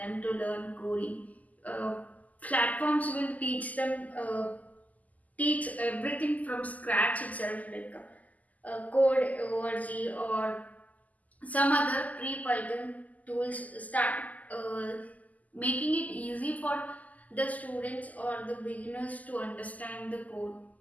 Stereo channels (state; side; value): late; right; 0.077 ms